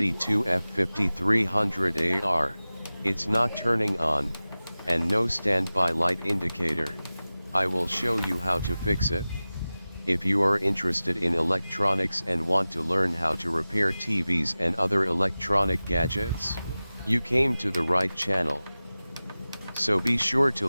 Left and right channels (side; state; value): both; inverted; correlation -0.97